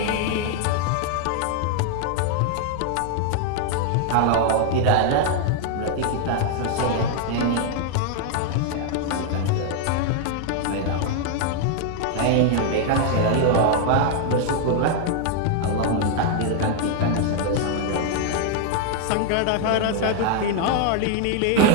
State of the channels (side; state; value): both; different; correlation 0.00